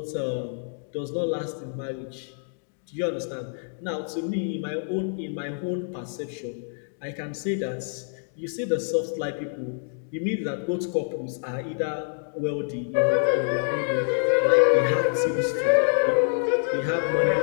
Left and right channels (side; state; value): right; silent; 60 dB below the other